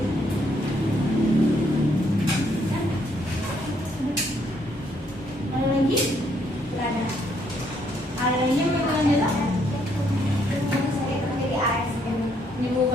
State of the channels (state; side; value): normal; both; correlation 0.70